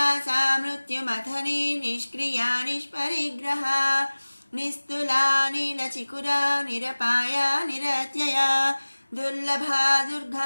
మృత్యుమథని నిష్క్రియా నిష్పరిగ్రహ నిస్తులా నీలచికురా నిరపాయా నిరత్యయా దుర్లభా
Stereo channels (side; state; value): both; inverted; correlation -1.00